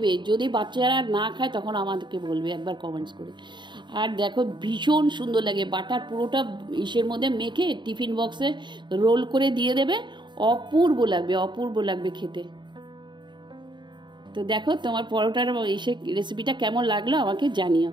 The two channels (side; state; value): left; late; 0.22 ms